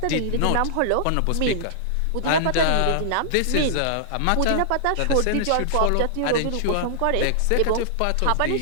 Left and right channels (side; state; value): both; different; correlation -0.01